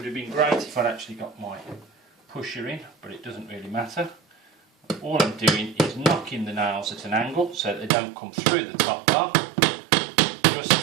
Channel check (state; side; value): drops out; left; at 7.9 s